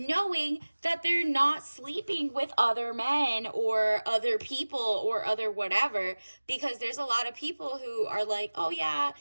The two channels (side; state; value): both; inverted; correlation -1.00